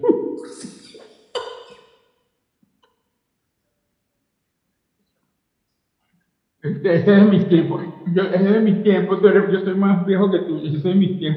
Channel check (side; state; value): both; identical; correlation 1.00